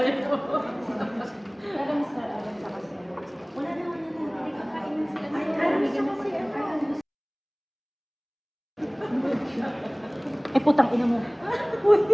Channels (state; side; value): identical; both; correlation 1.00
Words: putang ina mo.